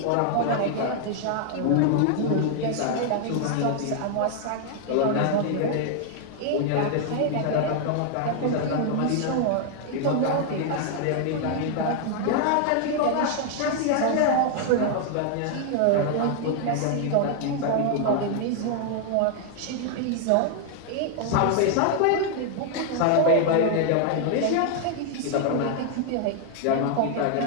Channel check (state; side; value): different; both; correlation 0.00